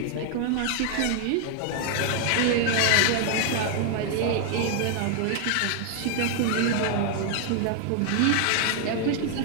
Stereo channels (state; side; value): different; both; correlation 0.00